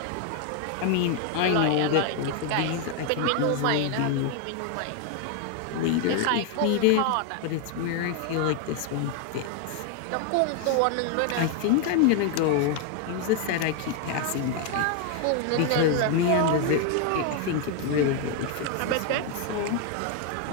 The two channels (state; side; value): different; both; correlation 0.01